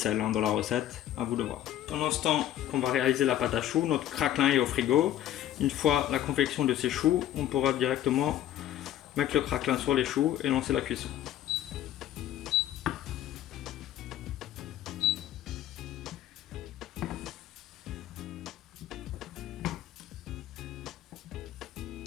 dans la recette, à vous de voir. Pendant ce temps qu'on va réaliser la pâte à choux, notre craquelin est au frigo. Une fois la confection de ces choux, on pourra directement mettre le craquelin sur les choux et lancer la cuisson.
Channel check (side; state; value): right; quieter; 12.2 dB